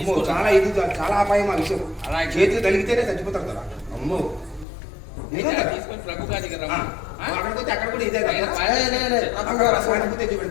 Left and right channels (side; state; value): right; drops out; at 4.7 s